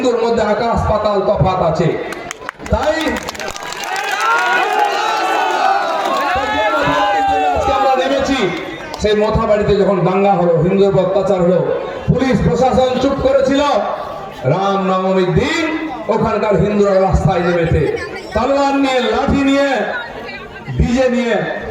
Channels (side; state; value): both; identical; correlation 1.00